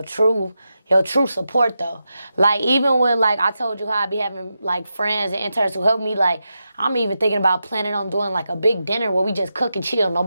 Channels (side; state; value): both; inverted; correlation -0.88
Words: true support though. Like even with like I told you how I be having like friends and interns who help me, like I'm even thinking about planning on doing like a big dinner where we just cook and chill.